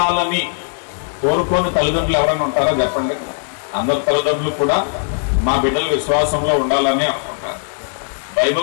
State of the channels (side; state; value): right; silent; digital silence